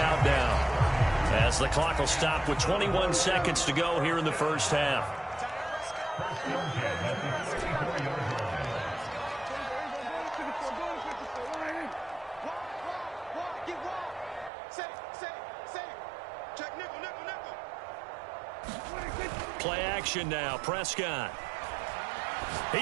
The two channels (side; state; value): left; drops out; at 14.5 s